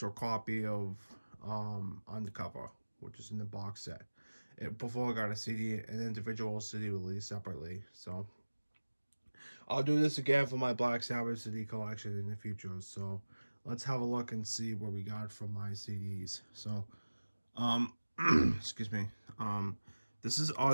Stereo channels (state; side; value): inverted; both; correlation -1.00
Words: copy of Undercover, which is in the box set. Before I got a CD, an individual CD released separately. So I'll do this again for my Black Sabbath CD collection in the future. So let's have a look and see what we got from my CDs. So um, excuse me. Um, this is